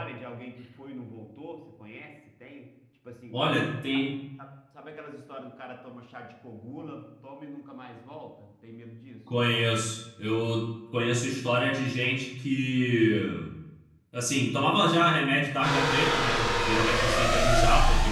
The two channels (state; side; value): identical; both; correlation 1.00